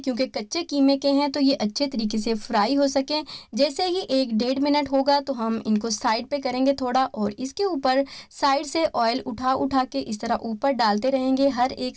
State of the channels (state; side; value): identical; both; correlation 1.00